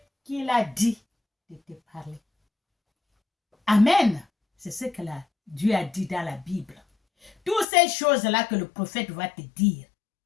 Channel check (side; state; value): right; drops out; at 7.7 s